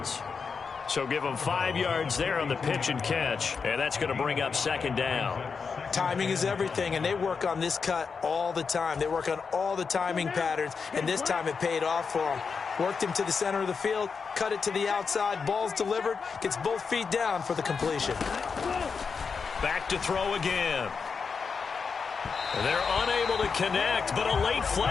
So give him 5 yards there on the pitch and catch. And that's going to bring up 2nd down. Timing is everything, and they work on this cut all the time. They work on all the timing patterns, and this time it paid off for them. Worked him to the center of the field, cut it to the outside, ball's delivered, gets both feet down for the completion. Back to throw again. They're unable to connect, but a late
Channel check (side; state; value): right; quieter; 5.5 dB